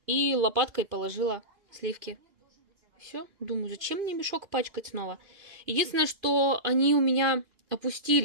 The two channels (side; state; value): left; late; 2.5 ms